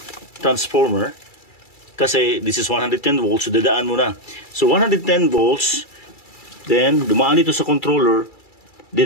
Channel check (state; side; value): late; right; 2.3 ms